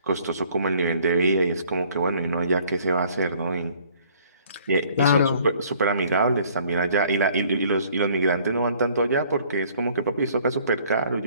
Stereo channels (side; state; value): both; inverted; correlation -0.58